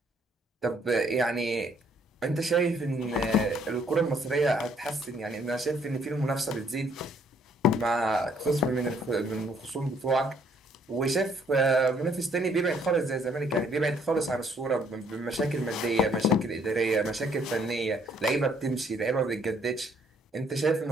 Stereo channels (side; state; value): both; normal; correlation 0.65